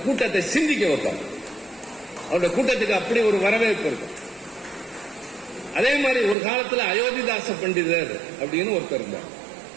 கூட்டத்தை சிந்திக்க வைப்பார். அவருடைய கூட்டத்துக்கு அப்படி ஒரு வரவேற்பு இருக்கு. அதே மாதிரி ஒரு காலத்துல அயோத்திதாச பண்டிதர் அப்படின்னு ஒருத்தர் இருந்தார்,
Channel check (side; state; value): left; drops out; at 6.4 s